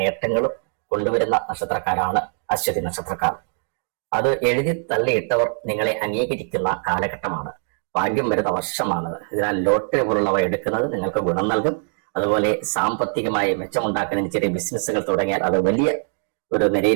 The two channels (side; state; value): left; silent; digital silence